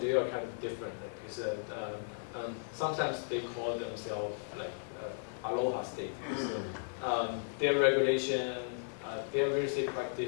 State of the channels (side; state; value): right; silent; 54 dB below the other